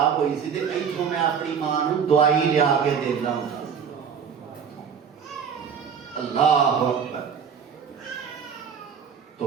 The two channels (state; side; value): quieter; left; 7.2 dB